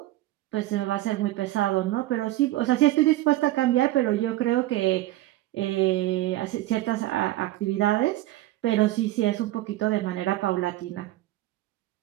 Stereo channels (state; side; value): quieter; left; 16.2 dB